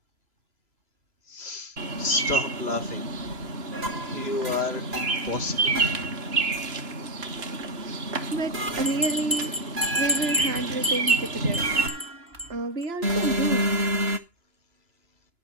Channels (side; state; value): left; late; 2.9 ms